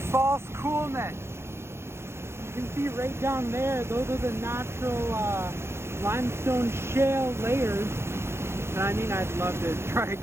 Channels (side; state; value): left; late; 0.12 ms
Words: false coolness. You can see right down there, those are the natural limestone shale layers. And I mean, I'd love to try to